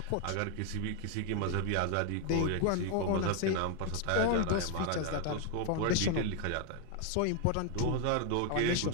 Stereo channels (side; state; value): both; different; correlation 0.01